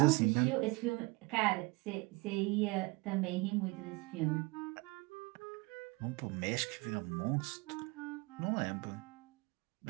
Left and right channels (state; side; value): quieter; left; 25.7 dB